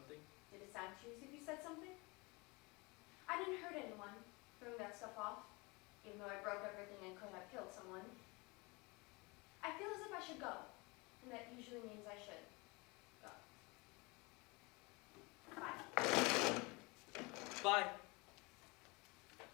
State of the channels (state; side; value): quieter; right; 26.4 dB